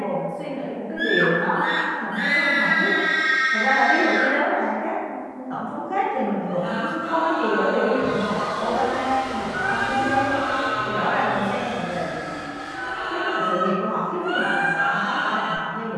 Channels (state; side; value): identical; both; correlation 1.00